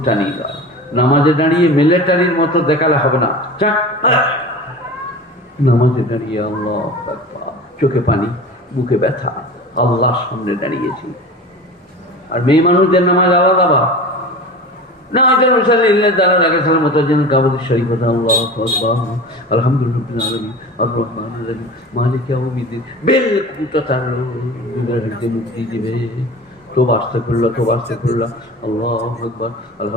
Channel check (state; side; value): normal; both; correlation 0.35